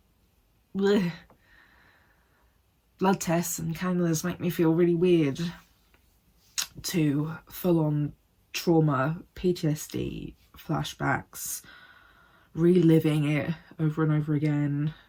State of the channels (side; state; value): both; identical; correlation 1.00